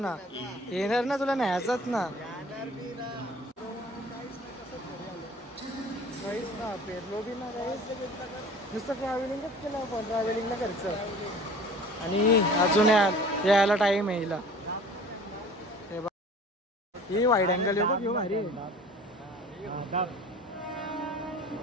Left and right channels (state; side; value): normal; both; correlation 0.45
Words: ना. येणार ना तुला न्यायचंच ना. काहीच ना पेरलो बी ना काहीच. नुसतं ट्रॅव्हलिंगच केलं आपण, ट्रॅव्हलिंगला खर्च. आणि अजून यायला टाईम आहे हिला. हे बघ ही वाईड अँगल आहे बघ, ह्यो भारी आहे.